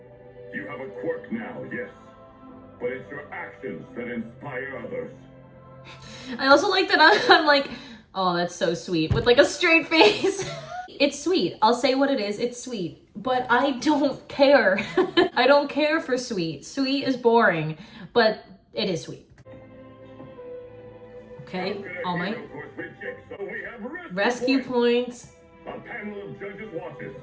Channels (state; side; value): identical; both; correlation 1.00